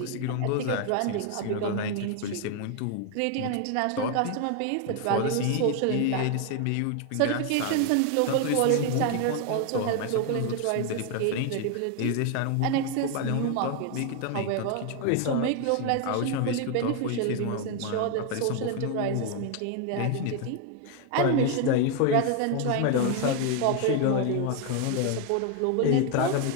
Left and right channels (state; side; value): different; both; correlation 0.01